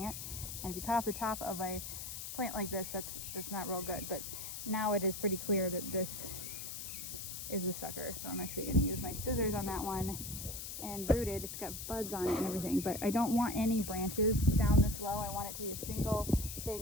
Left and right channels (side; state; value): left; noise; hiss, 7 dB below the sound